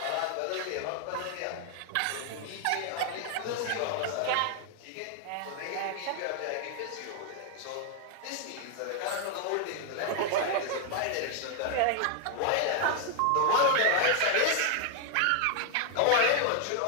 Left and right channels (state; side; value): different; both; correlation 0.00